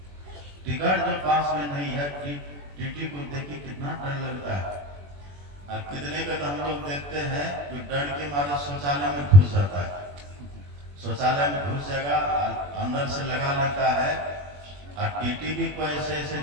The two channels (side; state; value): left; late; 21 ms